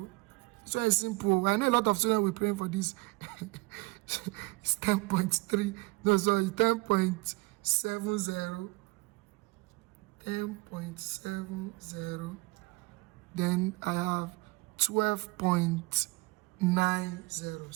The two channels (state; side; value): quieter; left; 24.3 dB